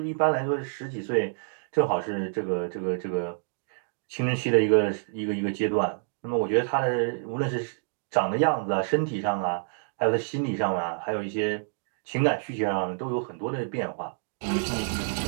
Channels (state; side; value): silent; left; digital silence